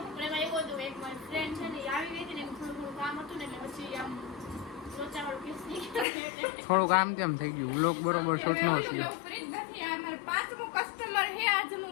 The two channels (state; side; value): drops out; right; at 6.1 s